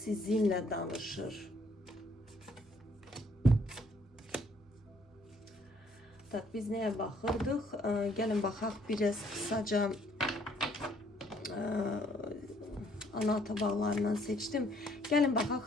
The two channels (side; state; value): both; normal; correlation 0.65